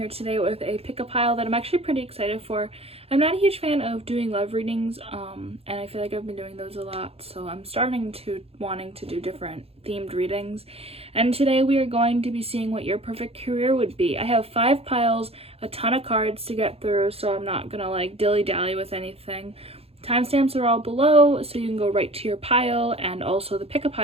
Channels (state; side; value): late; left; 0.29 ms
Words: today with a pick-a pile that I'm actually pretty excited for. I'm not a huge fan of doing love readings, and I feel like I've been doing those a lot, so I'm wanting to do different themed readings. And today we are going to be seeing what your perfect career would be. I have 5 piles, a ton of cards to get through, so I'm not gonna like dilly-dally with anything. Timestamps are all below, so you can go right to your pile, and also the